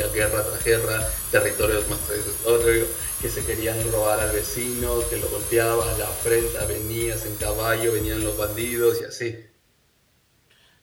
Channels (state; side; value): identical; both; correlation 1.00